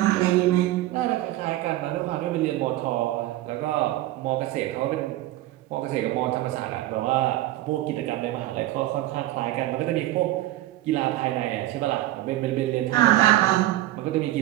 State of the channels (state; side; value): quieter; left; 15.6 dB